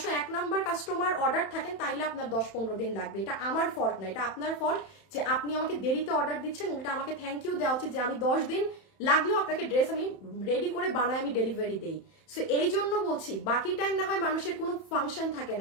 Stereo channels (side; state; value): right; late; 31 ms